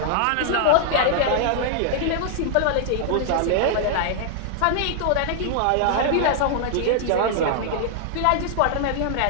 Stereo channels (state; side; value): different; both; correlation -0.01